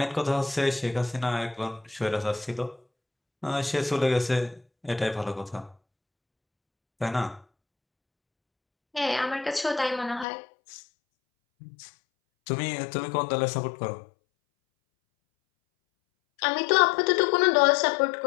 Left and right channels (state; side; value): drops out; right; at 10.2 s